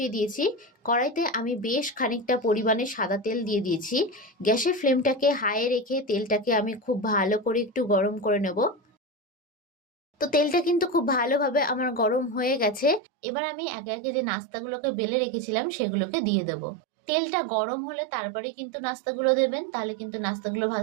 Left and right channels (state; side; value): drops out; left; at 13.0 s